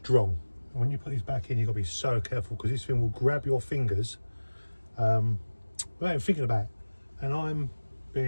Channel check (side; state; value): both; inverted; correlation -1.00